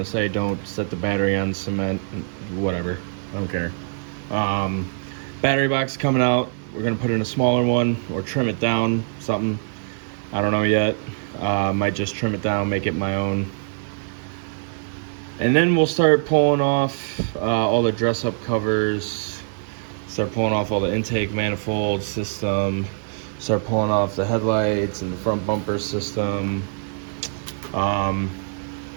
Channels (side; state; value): left; silent; 63 dB below the other